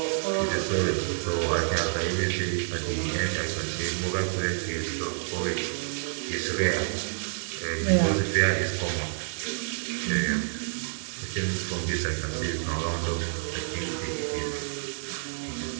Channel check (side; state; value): left; silent; digital silence